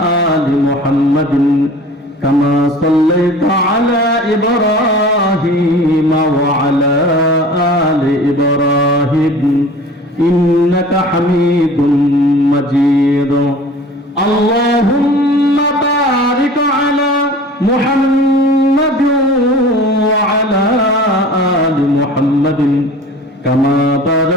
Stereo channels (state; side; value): normal; both; correlation 0.42